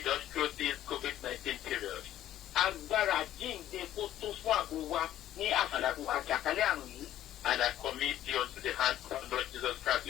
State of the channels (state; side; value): quieter; right; 12.5 dB